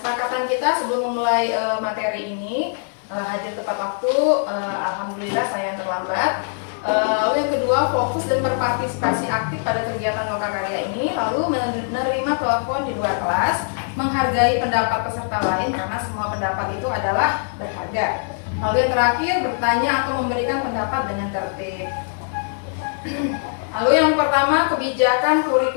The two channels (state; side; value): silent; right; digital silence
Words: kita sebelum memulai materi ini hadir tepat waktu. Alhamdulillah saya yang terlambat. Lalu yang kedua, fokus dan berpartisipasi aktif pada kegiatan lokakarya ini. Lalu menerima telepon di luar kelas, menghargai pendapat peserta lain karena semua pendapat itu adalah berharga. Lalu yang terakhir, bertanya atau memberikan pendapat dengan tertib. Lalu yang pertama, kebijakan